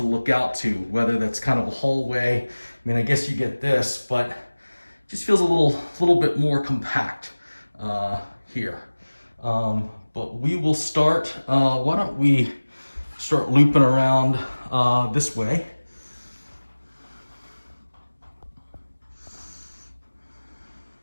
look out to, whether that's kind of a hallway. I mean, I guess you get this, but it just feels a little bit more compact here. But we will start. Why don't we start looping around this way?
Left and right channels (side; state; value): both; inverted; correlation -1.00